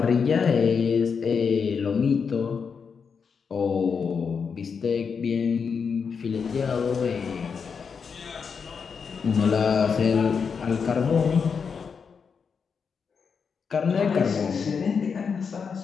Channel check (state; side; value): quieter; right; 6.0 dB